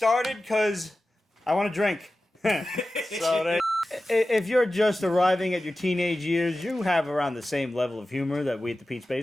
because I want to drink. If you're just arriving at your teenage years, you have around the same level of humor that we at the Peach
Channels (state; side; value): normal; both; correlation 0.94